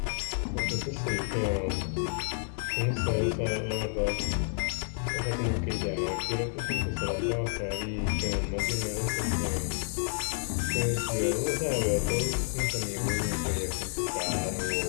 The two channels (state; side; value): silent; right; 58 dB below the other